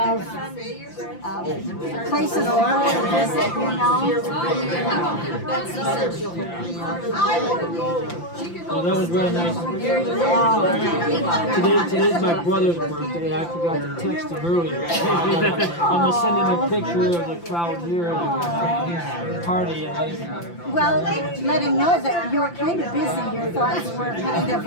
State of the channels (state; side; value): late; right; 5.8 ms